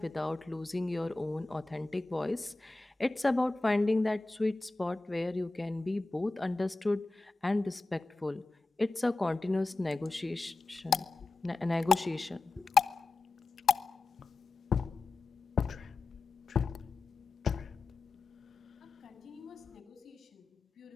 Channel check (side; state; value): right; quieter; 3.4 dB